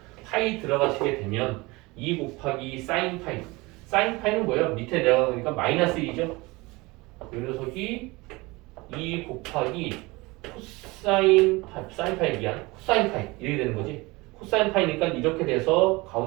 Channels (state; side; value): quieter; left; 23.3 dB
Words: 파이 들어가시게 되면 2 곱하기 사인 파이. 사인 파이는 뭐예요? 밑에 내려가니까 마이너스 1이죠. 이 녀석이 2 곱하기 코사인 파이, 사인 파이 미안, 코사인 파이 이렇게 되는 거지. 코사인 파이니까 이렇게 돼서